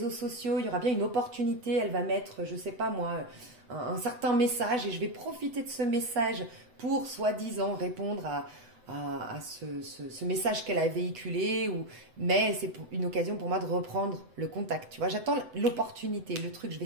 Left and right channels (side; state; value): left; late; 7.9 ms